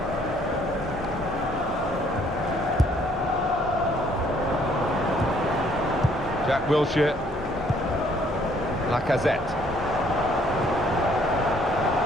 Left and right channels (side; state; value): both; normal; correlation 0.64